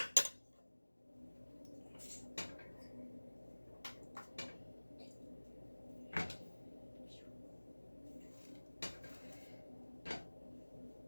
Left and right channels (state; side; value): inverted; both; correlation -1.00